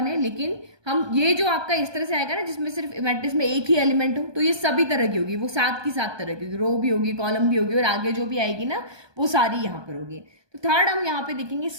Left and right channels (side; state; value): left; late; 1.2 ms